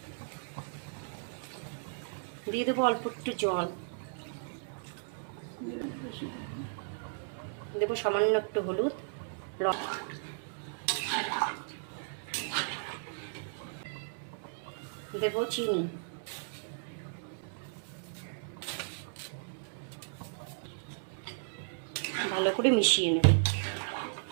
দিয়ে দেবো অল্প একটু জল, দেবো সামান্য একটু হলুদ, দেবো চিনি, ভালো করে মিশিয়ে নেব।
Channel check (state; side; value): silent; left; 54 dB below the other